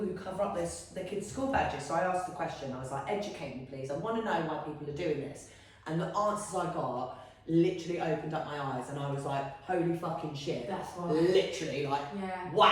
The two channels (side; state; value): both; identical; correlation 1.00